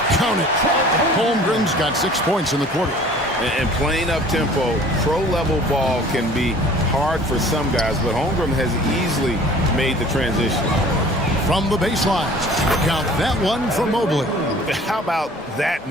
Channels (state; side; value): normal; both; correlation 0.48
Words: Count it. Holmgren's got 6 points in the quarter. And playing up-tempo, pro-level ball can be hard for some guys, but Holmgren has easily made the transition. From the baseline, count that one from Mobley. How about that